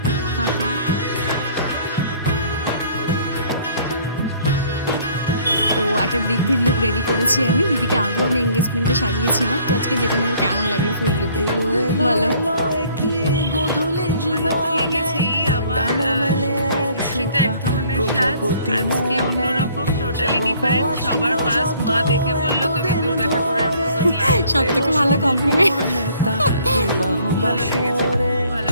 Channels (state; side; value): inverted; both; correlation -0.58